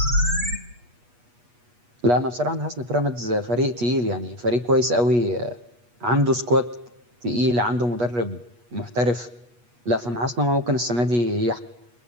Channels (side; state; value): left; late; 8.3 ms